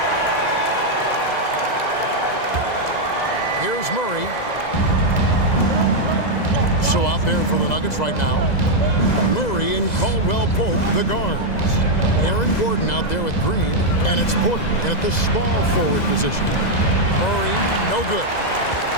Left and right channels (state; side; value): late; right; 2.0 ms